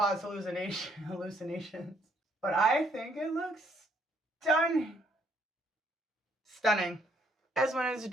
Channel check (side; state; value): both; normal; correlation 0.69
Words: hallucinations, but I think it looks stunning. Stunning. As when it's